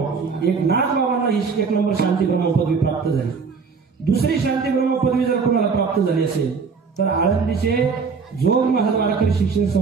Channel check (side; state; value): left; quieter; 5.3 dB